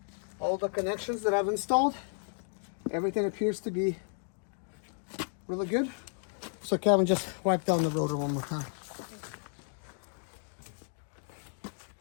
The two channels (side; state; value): right; silent; 56 dB below the other